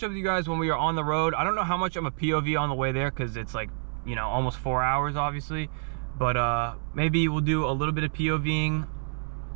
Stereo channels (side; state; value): left; silent; 60 dB below the other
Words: up with you guys when we are on the road. I don't know how much I'm a POV on the way there, because it's like, you know, almost 4 hours obviously. But maybe we'll do a little bit of POVing,